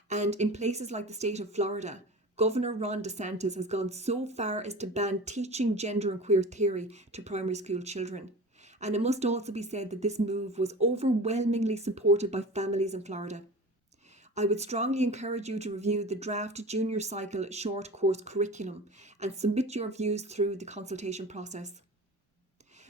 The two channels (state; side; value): normal; both; correlation 0.36